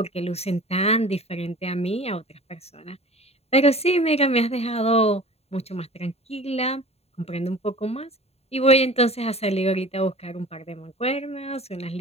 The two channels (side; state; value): right; late; 0.30 ms